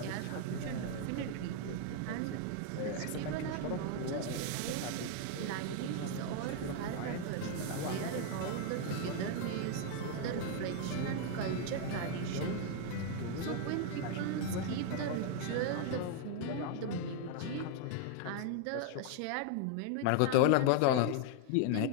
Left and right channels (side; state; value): both; different; correlation 0.00